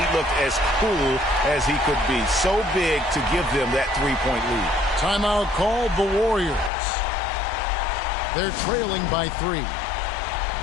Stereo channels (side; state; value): right; drops out; at 6.7 s